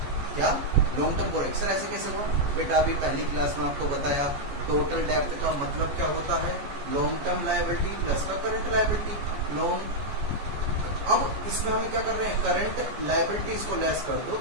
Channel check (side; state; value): left; late; 14 ms